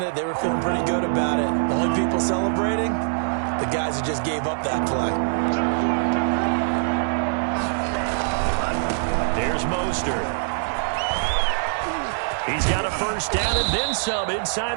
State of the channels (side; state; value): left; silent; digital silence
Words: it? They were feeling pretty good about it. The only people celebrating, the guys who just gave up that play. Here's Mostert. He's got a 1st down and then some